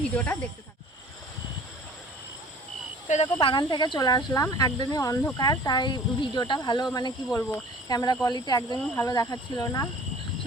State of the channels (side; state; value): both; normal; correlation 0.47